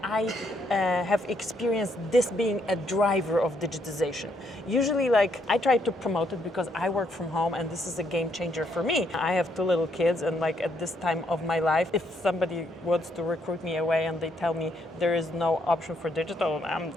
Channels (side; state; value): both; normal; correlation 0.73